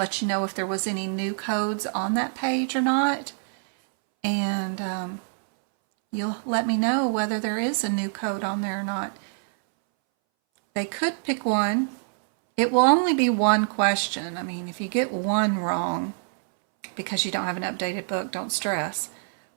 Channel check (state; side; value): silent; left; 61 dB below the other